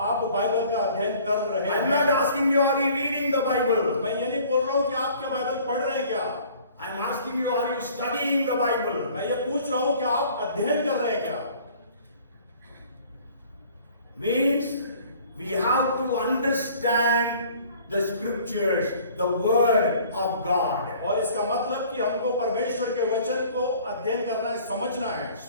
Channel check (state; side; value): inverted; both; correlation -0.52